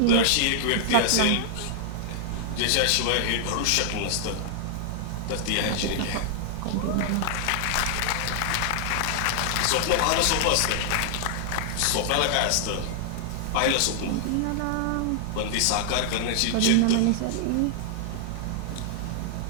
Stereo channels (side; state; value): both; different; correlation -0.01